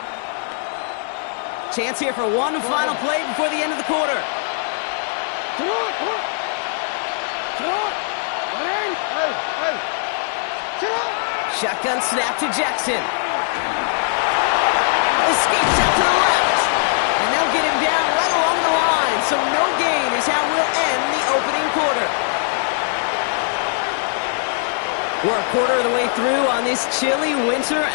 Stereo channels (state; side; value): silent; right; digital silence